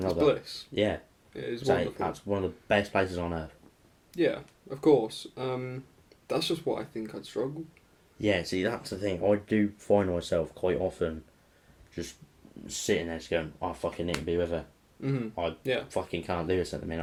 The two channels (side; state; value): both; identical; correlation 1.00